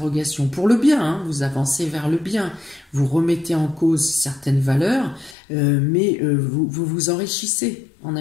pour le bien, hein, vous avancez vers le bien, vous remettez en cause certaines valeurs, mais vous vous enrichissez en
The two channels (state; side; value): drops out; right; at 5.4 s